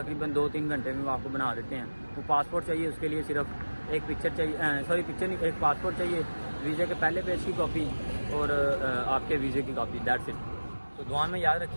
2-3 گھنٹے میں وہ آپ کو بنا دیتے ہیں. وہ پاسپورٹ چاہیے, اس کے لیے صرف ایک پکچر چاہیے, پکچر نہیں, ایک پاسپورٹ چاہیے, ویزے کے پہلے پیج کی کاپی اور آپ کے ویزے کی کاپی, دیٹس اٹ. تو دعا میں یاد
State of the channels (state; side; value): inverted; both; correlation -1.00